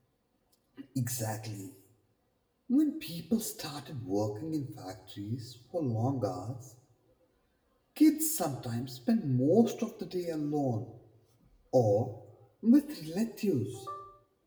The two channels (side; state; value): both; identical; correlation 1.00